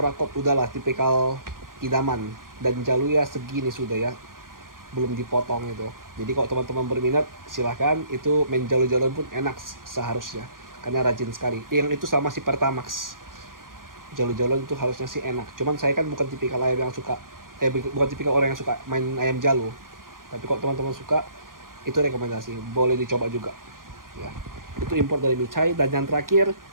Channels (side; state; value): left; late; 0.90 ms